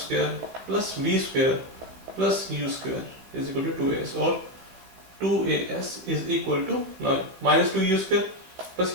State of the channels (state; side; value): late; left; 16 ms